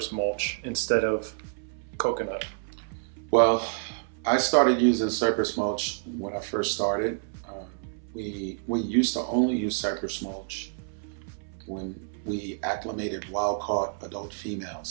mulch instead of coconut? Well, I started using cypress mulch when I first started. We used to only use cypress mulch when we acclimated wild-caught adult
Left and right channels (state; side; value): silent; left; 59 dB below the other